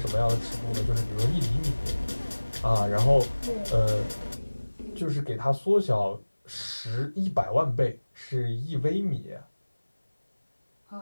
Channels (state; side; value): inverted; both; correlation -1.00